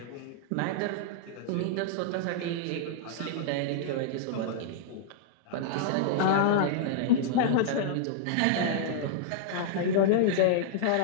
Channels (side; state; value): both; different; correlation -0.02